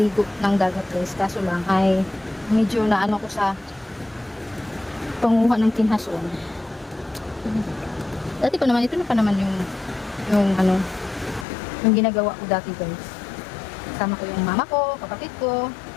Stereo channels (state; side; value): drops out; right; at 11.5 s